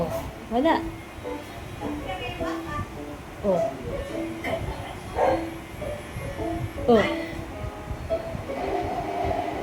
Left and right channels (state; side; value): identical; both; correlation 1.00